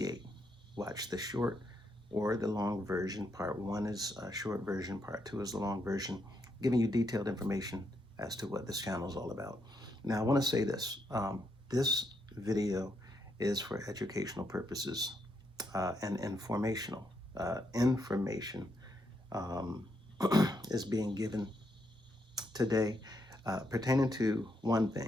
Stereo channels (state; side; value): normal; both; correlation 0.78